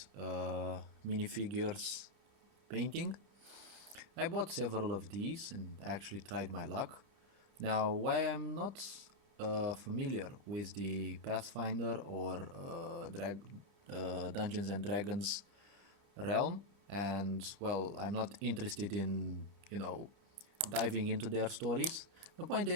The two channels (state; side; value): late; left; 30 ms